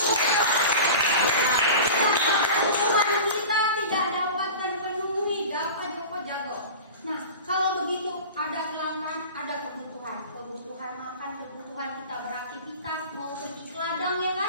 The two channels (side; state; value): both; inverted; correlation -0.35